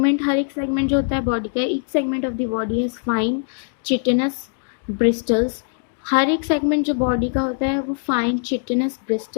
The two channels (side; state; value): right; silent; digital silence